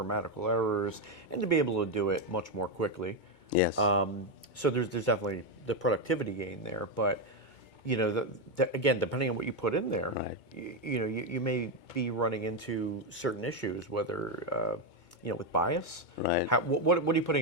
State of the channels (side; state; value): right; late; 2.2 ms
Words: errors, and to be able to do it much more quickly. Yes. So there's definitely the productivity gain there, but again, depending on what you put in there, Right. you may be running into certain issues, whether with bias. Right. What are you